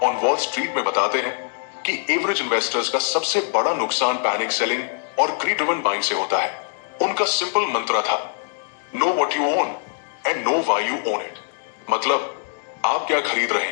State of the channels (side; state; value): right; silent; digital silence